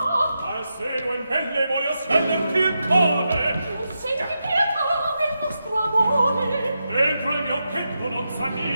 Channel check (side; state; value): both; inverted; correlation -0.87